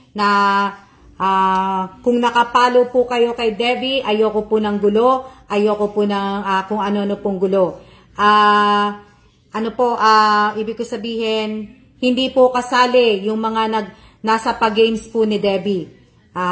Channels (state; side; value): identical; both; correlation 1.00